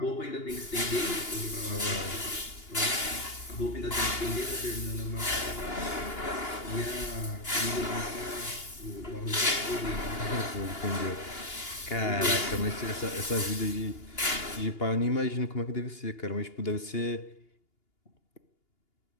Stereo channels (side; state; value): right; late; 2.8 ms